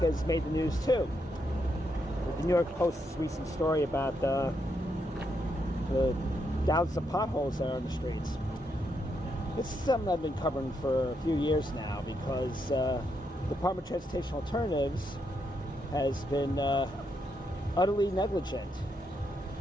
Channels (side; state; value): both; normal; correlation 0.80